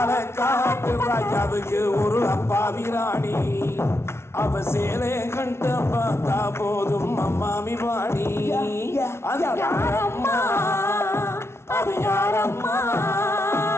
ராஜாவுக்கு ஒரு அப்பாவி ராணி, அவ சேலை கண்ட பார்த்தா போதும் அம்மாமி வாணி. அது யாரம்மா அது யாரம்மா,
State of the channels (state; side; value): late; right; 0.12 ms